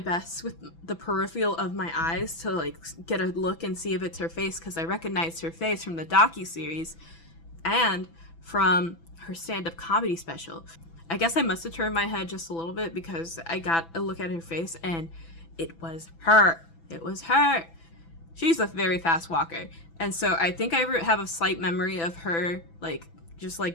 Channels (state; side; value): late; right; 6.0 ms